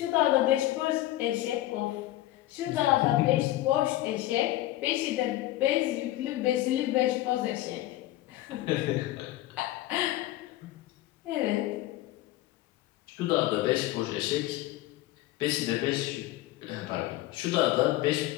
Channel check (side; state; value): right; quieter; 15.7 dB